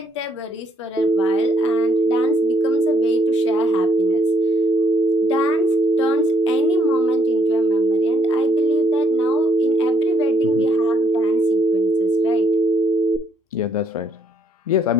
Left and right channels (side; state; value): both; normal; correlation 0.69